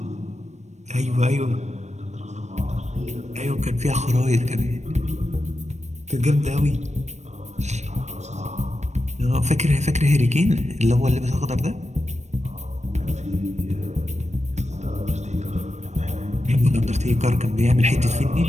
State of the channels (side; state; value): left; late; 0.34 ms